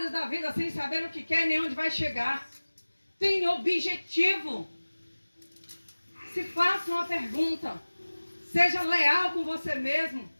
da vida, sem saber o que quer nem onde vai chegar. Tem objetivo. Se faça uma pergunta. Seja leal com você mesmo.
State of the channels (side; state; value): both; inverted; correlation -1.00